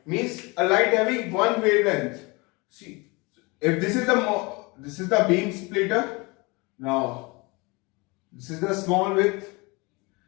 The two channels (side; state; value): right; quieter; 26.6 dB